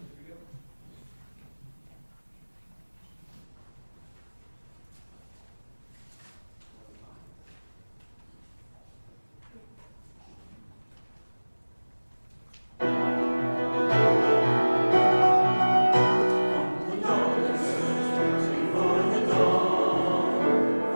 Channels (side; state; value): both; inverted; correlation -1.00